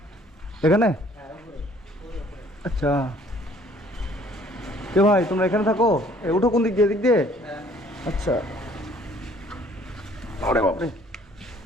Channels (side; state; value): both; normal; correlation 0.58